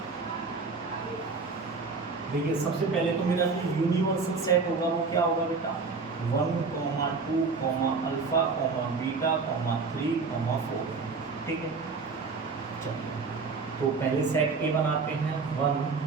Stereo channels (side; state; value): left; quieter; 4.5 dB